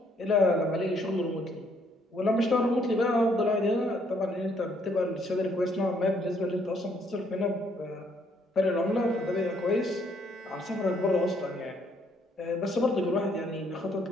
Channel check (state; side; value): normal; both; correlation 0.68